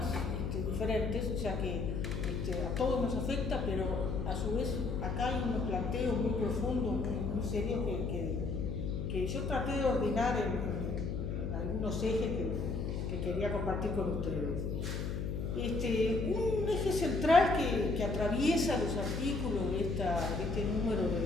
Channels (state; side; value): noise; left; hum, 2 dB below the sound